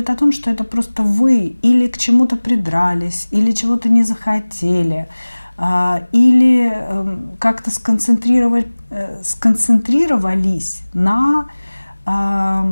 о том, что это просто вы или к чему-то придрались, или чего-то не захотели, или как-то сконцентрировались на,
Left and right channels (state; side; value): inverted; both; correlation -1.00